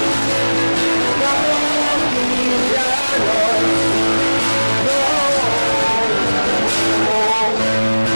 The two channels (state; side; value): inverted; both; correlation -1.00